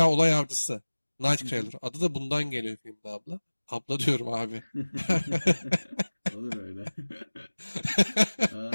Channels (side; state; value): both; inverted; correlation -1.00